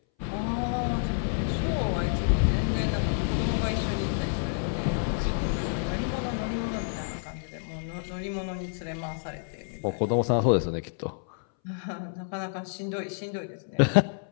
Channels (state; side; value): silent; right; 59 dB below the other